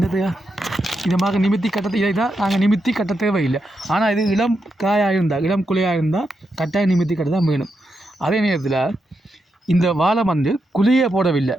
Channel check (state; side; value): normal; both; correlation 0.84